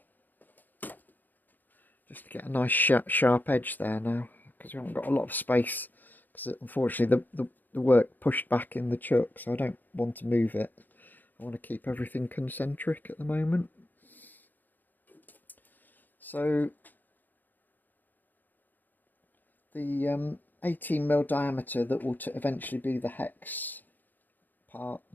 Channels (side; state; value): right; late; 0.087 ms